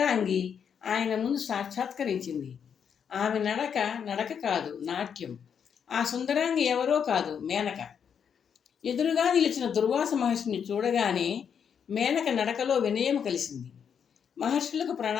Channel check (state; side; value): quieter; right; 7.5 dB